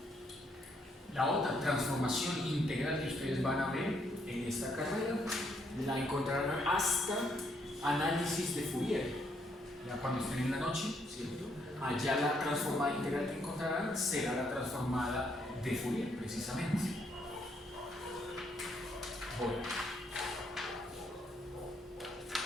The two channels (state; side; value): normal; both; correlation 0.73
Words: La otra transformación integral que ustedes van a ver en esta carrera la encontrarán hasta análisis de Fourier, ya cuando estén en la noche, ¿cierto? Allá la transformada integral que encontrarán será la transformada de Fourier, precisamente. Bueno,